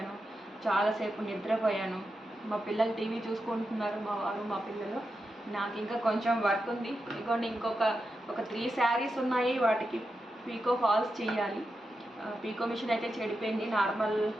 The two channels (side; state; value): both; normal; correlation 0.88